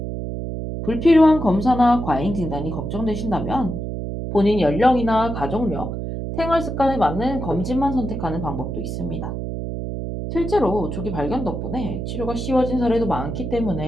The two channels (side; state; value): right; noise; hum, 5 dB below the sound